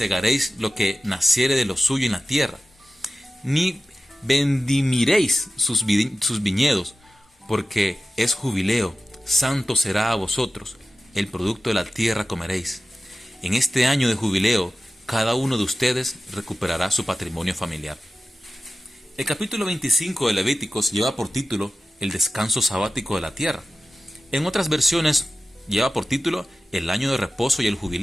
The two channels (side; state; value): both; normal; correlation 0.94